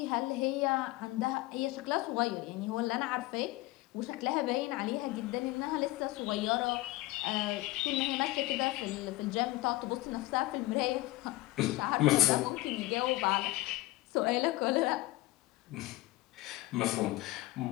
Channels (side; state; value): right; quieter; 18.9 dB